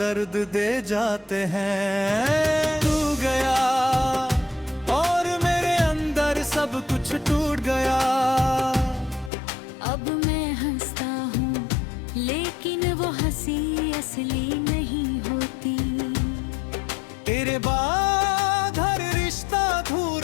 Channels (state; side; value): drops out; right; at 9.3 s